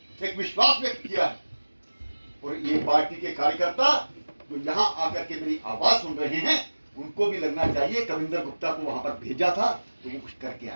एक विश्वास व्यक्त किया है, और ये पार्टी के कार्यकर्ता जो यहां आकर के मेरी आवाज सुन रहे हैं, उनको भी लगना चाहिए कविंदर गुप्ता को वहां पर भेजा था तो वो कुछ करके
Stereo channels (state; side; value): inverted; both; correlation -1.00